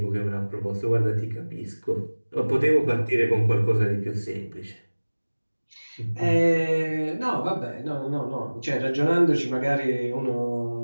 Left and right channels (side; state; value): both; inverted; correlation -1.00